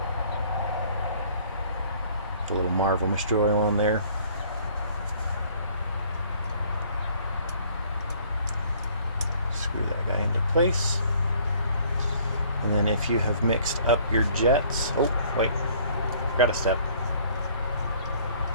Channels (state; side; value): inverted; both; correlation -0.57